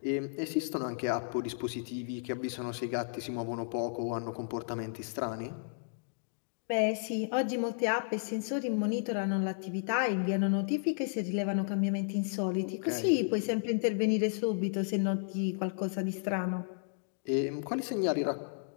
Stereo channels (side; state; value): right; silent; digital silence